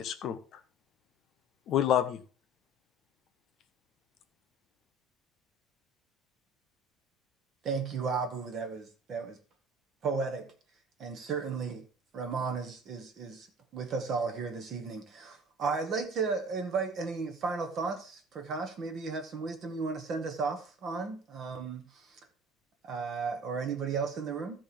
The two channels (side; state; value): both; normal; correlation 0.43